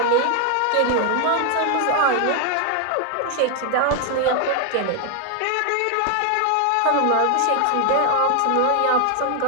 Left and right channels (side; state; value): both; different; correlation 0.01